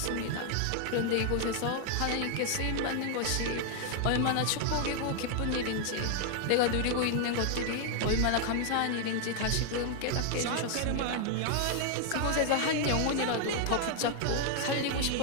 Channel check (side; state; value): both; different; correlation 0.00